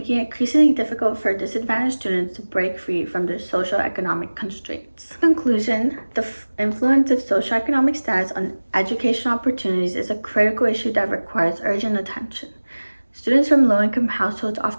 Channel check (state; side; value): inverted; both; correlation -1.00